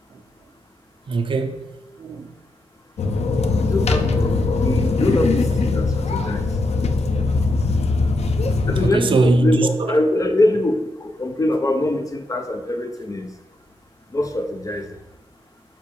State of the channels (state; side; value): normal; both; correlation 0.83